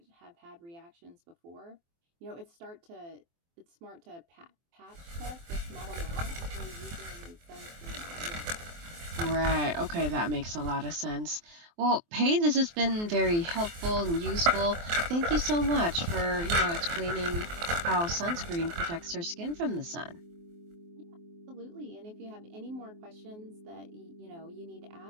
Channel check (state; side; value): late; left; 23 ms